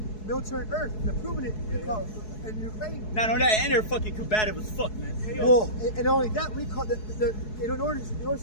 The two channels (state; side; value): late; right; 4.7 ms